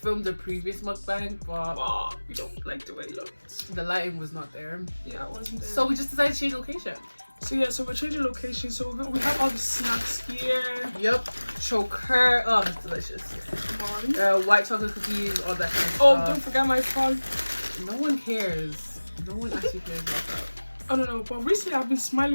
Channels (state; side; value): inverted; both; correlation -1.00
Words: the previous mukbang, but we don't like the way it looks. the lighting was not there. Yeah, it wasn't there. So we just decided to change location. So we're changing location. So we have all the snacks here. Yep. Choker. Oh, it's delicious. Come on. White chocolate cookies, all that kind of Oh, stuff. don't forget my phone. No one cares. No one actually cares about that. I don't know, but recently I've been